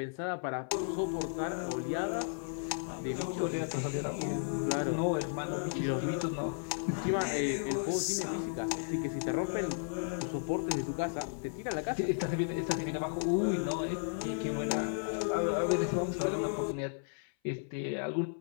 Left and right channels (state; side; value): silent; right; 55 dB below the other